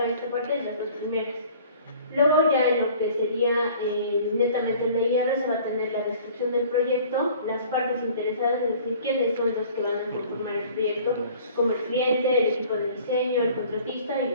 en esta parte de las dos primeras. Luego ya en lo que sería netamente el IR se va a tener la descripción del proyecto, las partes interesadas, es decir, quiénes son los que van a conformar el proyecto, como el cliente, el equipo de diseño, el contratista y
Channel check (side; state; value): both; inverted; correlation -0.50